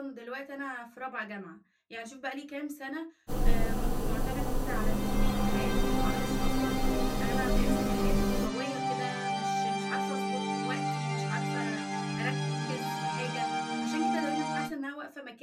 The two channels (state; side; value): identical; both; correlation 1.00